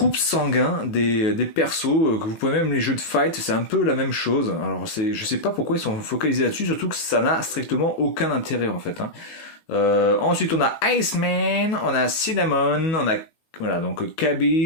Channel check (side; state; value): right; late; 19 ms